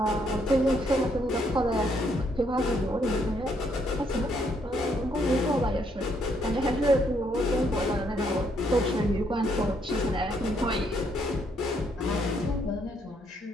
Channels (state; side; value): normal; both; correlation 0.72